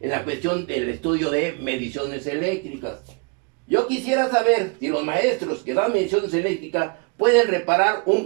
la cuestión del estudio de mediciones eléctricas. Yo quisiera saber si los maestros que dan mediciones eléctricas pueden reparar un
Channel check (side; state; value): left; quieter; 34.0 dB